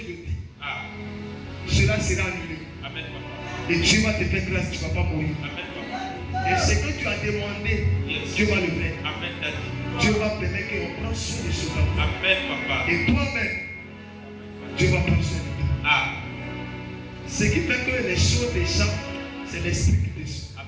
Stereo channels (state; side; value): identical; both; correlation 1.00